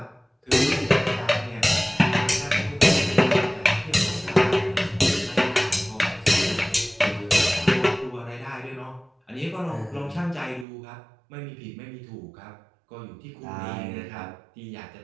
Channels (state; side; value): drops out; left; at 10.7 s